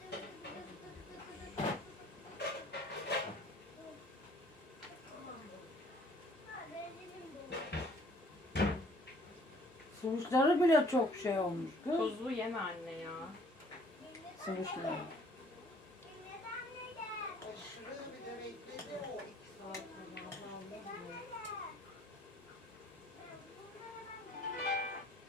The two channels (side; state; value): both; normal; correlation 0.58